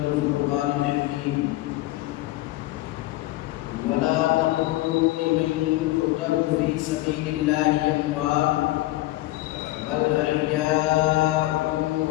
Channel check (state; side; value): quieter; right; 17.6 dB